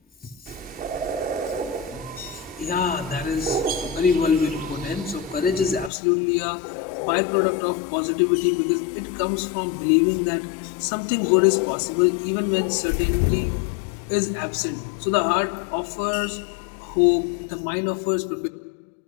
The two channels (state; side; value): drops out; right; at 5.9 s